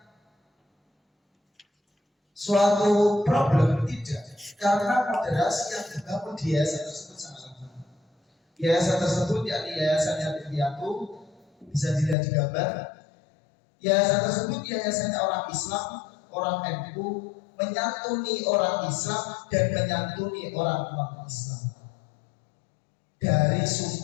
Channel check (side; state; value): right; drops out; at 12.2 s